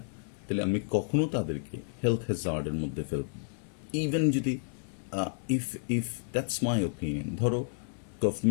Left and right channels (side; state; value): right; silent; digital silence